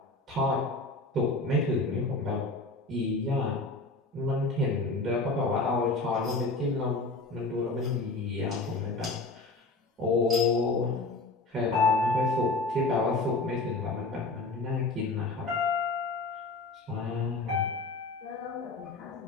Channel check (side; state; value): right; quieter; 3.3 dB